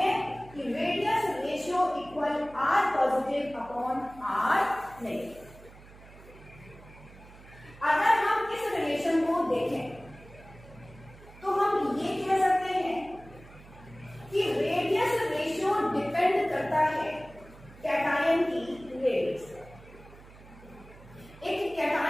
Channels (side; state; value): right; noise; hum, 21 dB below the sound